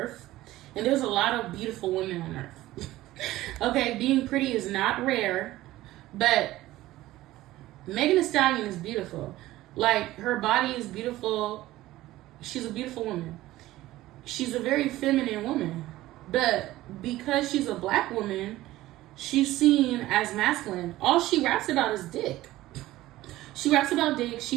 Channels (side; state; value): left; quieter; 16.4 dB